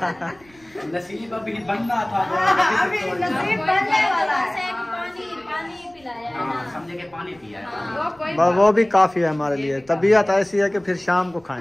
नसीब अभी बनना था, अभी नसीब बनने वाला है। पानी पिलाया है हाँ, ना। समझे कि पानी पिया है। वो कोई वो भी काफी है हमारे लिए। तबीयत ऐसी है कि फिर शाम को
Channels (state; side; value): noise; right; rumble, 30 dB below the sound